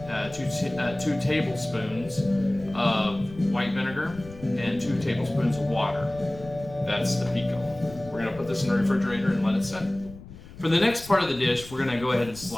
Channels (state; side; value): noise; left; rumble, 17 dB below the sound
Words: 2 tablespoons of white vinegar, and 2 tablespoons of water. That's the pico. We're going to put this in the refrigerator and let it set. For the next part of the dish, we're going to go ahead and